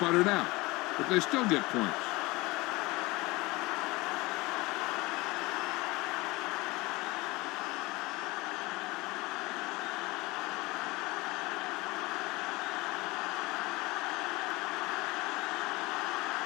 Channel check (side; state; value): right; quieter; 22.2 dB